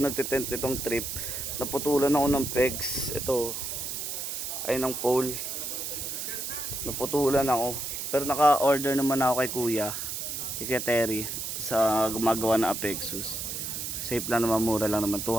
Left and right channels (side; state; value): right; noise; hiss, 4 dB below the sound